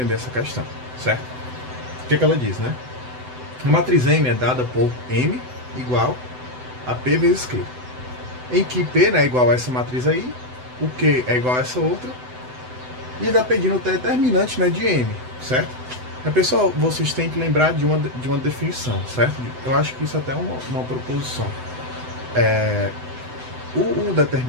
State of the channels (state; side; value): late; left; 7.9 ms